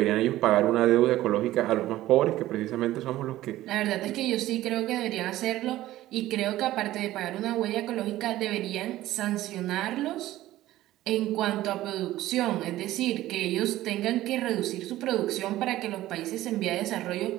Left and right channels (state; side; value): quieter; left; 15.3 dB